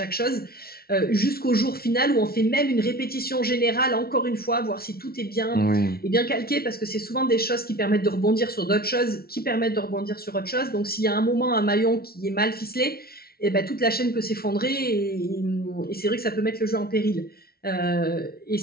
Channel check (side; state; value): right; late; 0.44 ms